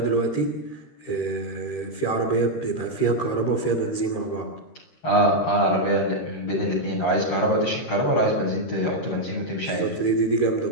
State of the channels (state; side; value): late; right; 13 ms